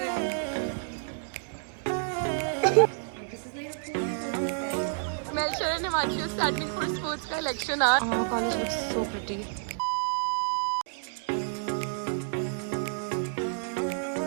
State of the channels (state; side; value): silent; left; digital silence